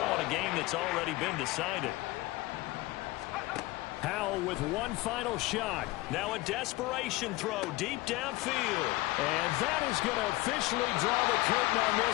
in a game that's already been decided. Howell with one final shot. Now a desperation throw deep downfield. And that is going to officially draw the curtain on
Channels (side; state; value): right; quieter; 19.9 dB